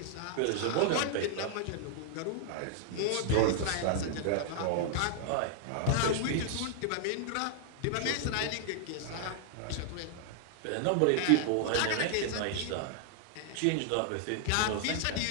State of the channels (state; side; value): different; both; correlation -0.01